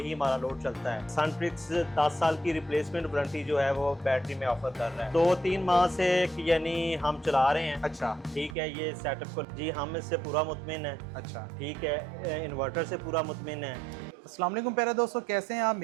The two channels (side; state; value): left; drops out; at 8.6 s